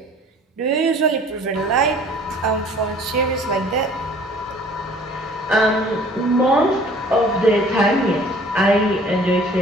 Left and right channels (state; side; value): normal; both; correlation 0.51